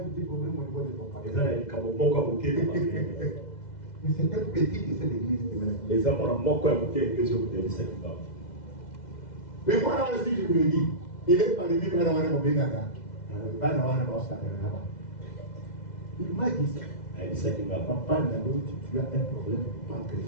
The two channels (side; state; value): right; late; 2.0 ms